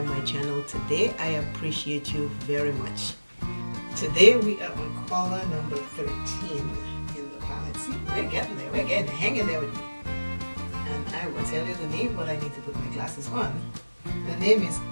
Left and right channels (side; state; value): both; inverted; correlation -1.00